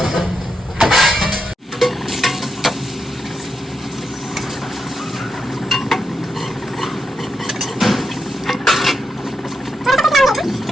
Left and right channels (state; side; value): normal; both; correlation 0.84